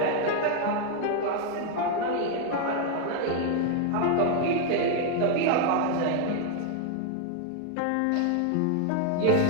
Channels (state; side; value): different; both; correlation 0.00